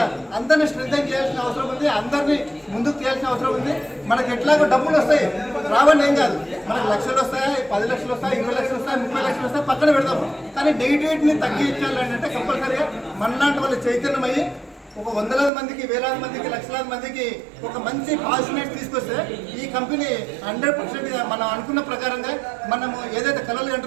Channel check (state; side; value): drops out; left; at 15.5 s